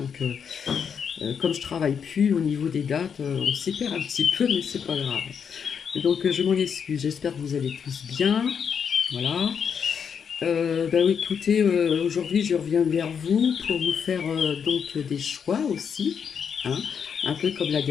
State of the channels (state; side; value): quieter; right; 7.0 dB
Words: comme je travaille plus au niveau des dates, on s'y perd un petit peu mais c'est pas grave. Donc je m'en excuse, j'espère que vous allez tous bien, voilà. Bah oui, écoutez, aujourd'hui je reviens vers vous pour vous faire donc des choix aussi, hein, un peu comme la